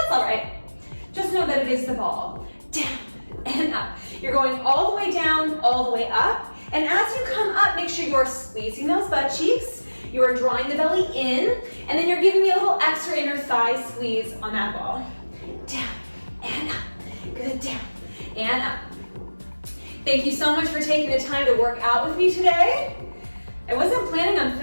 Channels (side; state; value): both; inverted; correlation -1.00